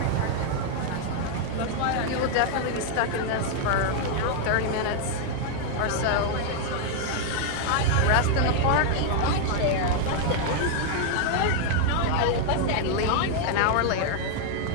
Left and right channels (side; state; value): both; different; correlation 0.00